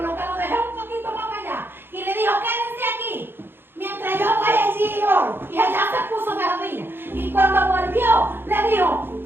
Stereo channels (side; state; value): left; late; 0.10 ms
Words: que lo dejé un poquito más allá, y le dijo: quédense aquí mientras yo voy allí y oro? Y allá se puso de rodillas. Y cuando volvió, le dijo: